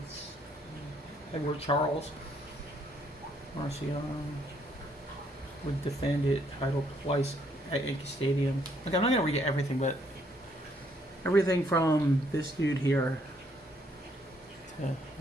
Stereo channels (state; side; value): normal; both; correlation 0.69